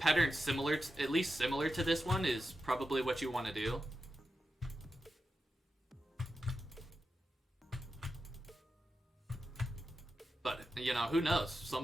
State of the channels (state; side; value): normal; both; correlation 0.90